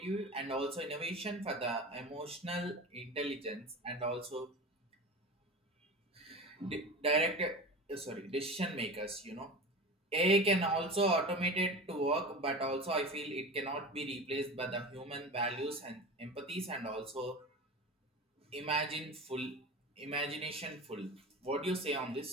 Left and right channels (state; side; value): normal; both; correlation 0.31